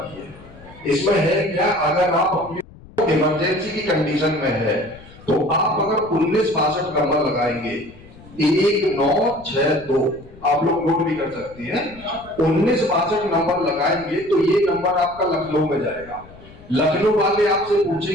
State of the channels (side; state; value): left; noise; rumble, 21 dB below the sound